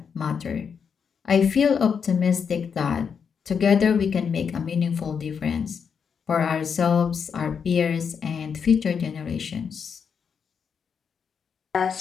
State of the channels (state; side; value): quieter; right; 6.6 dB